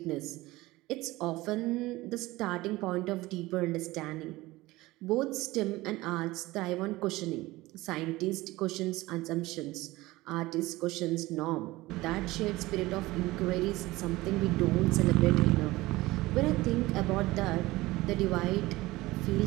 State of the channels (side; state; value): left; quieter; 19.3 dB